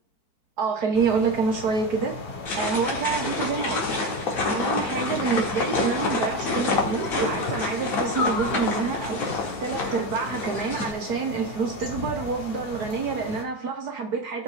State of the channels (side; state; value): left; late; 4.5 ms